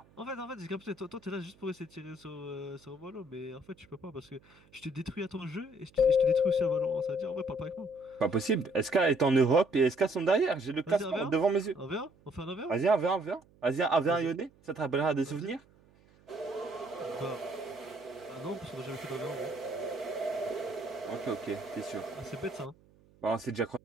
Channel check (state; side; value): noise; right; hum, 29 dB below the sound